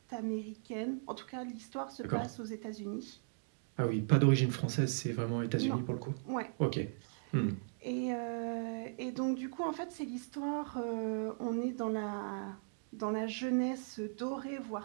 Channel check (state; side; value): silent; left; digital silence